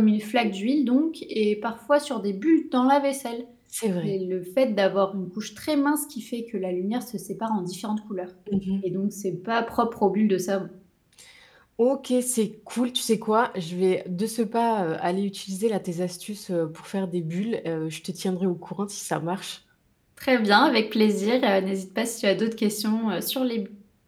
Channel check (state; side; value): identical; both; correlation 1.00